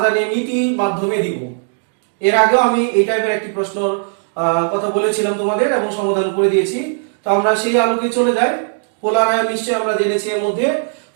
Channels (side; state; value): left; silent; digital silence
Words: নীতি মাধ্যমে দিব। এর আগেও আমি এই টাইপের একটি প্রশ্নের কথা বলেছিলাম তোমাদের এবং সমাধান করে দিয়েছি। তো আমরা সেই আলোকে চলে যাই। পোলার আয়ন নিশ্চয়ই আমরা জেনেছি। এর মধ্যে